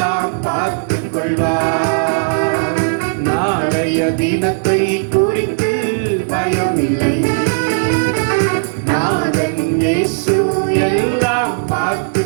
பார்த்துக் கொள்வார். நாளைய தினத்தை குறித்து பயமில்லை, நாதன் இயேசு எல்லாம்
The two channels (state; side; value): silent; left; digital silence